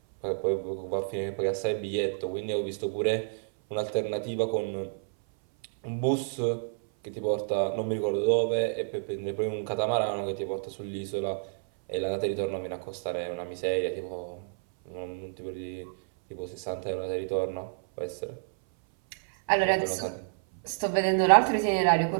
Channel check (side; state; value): left; silent; 58 dB below the other